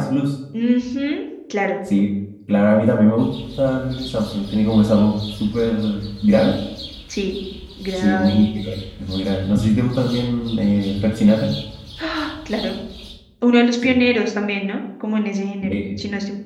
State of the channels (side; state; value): both; identical; correlation 1.00